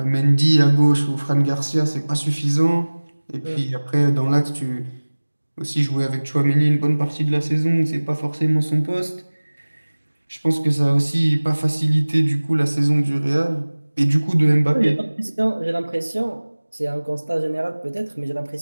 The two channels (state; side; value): inverted; both; correlation -1.00